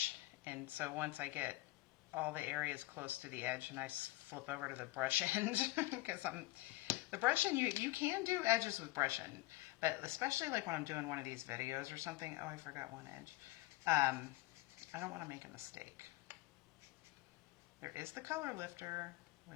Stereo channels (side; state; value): right; quieter; 19.7 dB